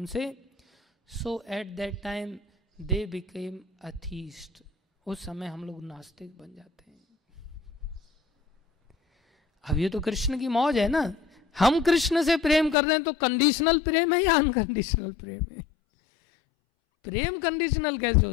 So at that time they became atheist, उस समय हम लोग नास्तिक बन जाते हैं। अब ये तो कृष्ण की मौज है ना, हम कृष्ण से प्रेम कर रहे हैं तो कंडीशनल प्रेम है या अनकंडीशनल प्रेम है? प्रेम कंडीशनल कैसे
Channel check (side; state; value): right; drops out; at 12.8 s